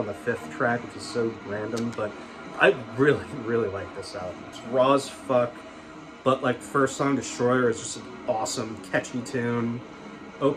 the 5th track, which is so random, but I really, really like this album. It's raw as fuck, but like first song, Destroyer, is just an awesome, catchy tune.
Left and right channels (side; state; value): both; identical; correlation 1.00